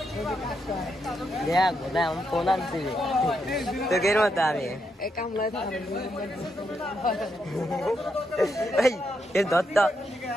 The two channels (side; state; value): both; normal; correlation 0.81